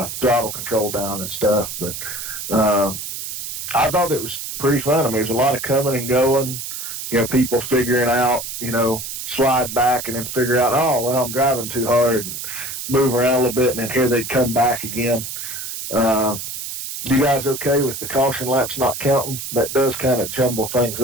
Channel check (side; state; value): right; noise; hiss, 7 dB below the sound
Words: throttle control down and stuff. But I thought it was pretty fun. I mean, there's a lot of coming and going, people figuring out, slide back and then figure out, oh, well, I'm driving too hard, and move around a little bit, and then here they'd come back again. You guys okay with the caution laps not counting? That does kind of jumble things